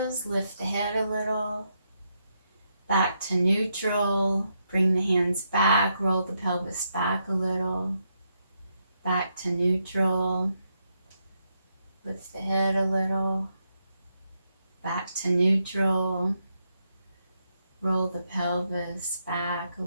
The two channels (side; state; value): both; inverted; correlation -0.81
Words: lift the head a little, back to neutral, bring the hands back, roll the pelvis back a little, back to neutral, lift the head a little, back to neutral, roll the pelvis back a